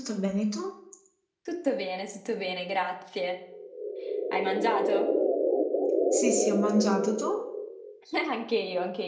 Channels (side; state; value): both; identical; correlation 1.00